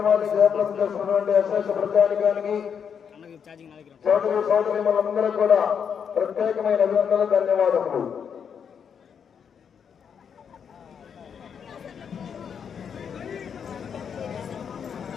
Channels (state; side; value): quieter; right; 7.3 dB